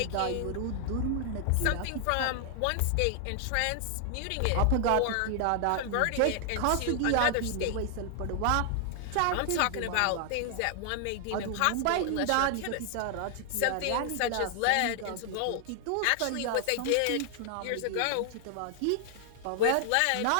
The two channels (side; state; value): both; different; correlation 0.00